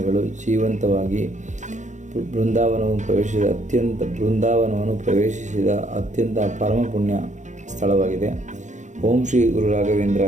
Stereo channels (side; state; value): left; late; 0.35 ms